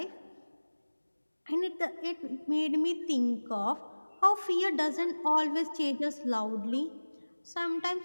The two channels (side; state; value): both; inverted; correlation -1.00